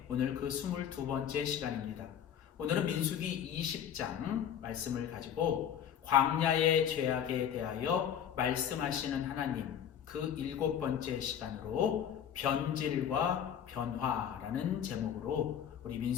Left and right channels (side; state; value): right; quieter; 9.1 dB